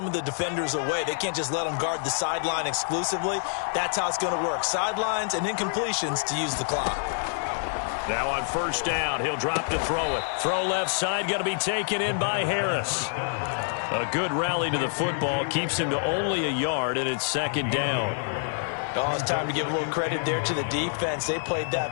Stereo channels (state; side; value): silent; right; digital silence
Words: of the defenders away. They can't just let them guard the sideline exclusively. That's how it's going to work. Sidelines and incompletions to use the clock. Now on first down, he'll drop to throw it. Throw left side, going to be taken in by Harris. A good rally to the football keeps him to only a yard, and it's second down. Oh, it's time to give a little credit there to the defense. They played